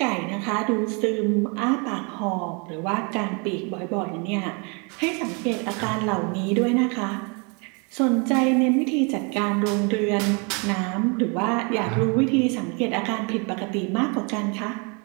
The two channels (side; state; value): left; quieter; 33.4 dB